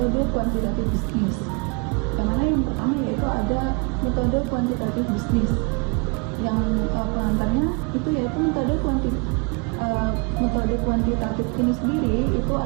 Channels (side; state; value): left; quieter; 32.5 dB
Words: kuantitatif bisnis. Yang mana yang pertama yaitu ada metode kuantitatif bisnis. Yang pengantarnya itu yaitu metode kuantitatif ini sendiri itu